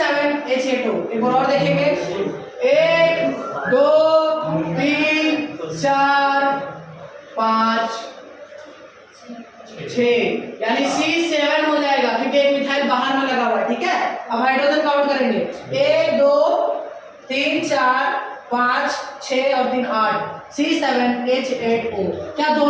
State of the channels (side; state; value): both; identical; correlation 1.00